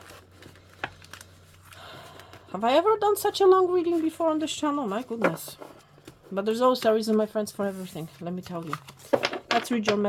Have I ever done such a long reading before on this channel? My goodness. But there's always a reason, my friends, for everything. Let me tell you. Let's read your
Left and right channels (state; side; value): identical; both; correlation 1.00